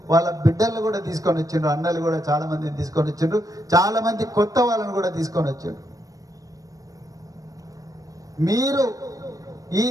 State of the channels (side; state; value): left; late; 0.17 ms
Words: వాళ్ళ బిడ్డలు కూడా తీసుకొని వచ్చిండ్రు, అన్నలు కూడా చాలా మందిని తీసుకొని వచ్చిండ్రు, చాలామంది కొత్త వాళ్ళని కూడా తీసుకొని వచ్చిండ్రు. మీరు ఈ